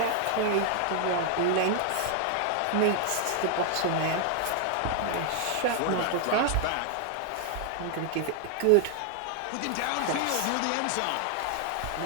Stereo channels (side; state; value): both; different; correlation 0.00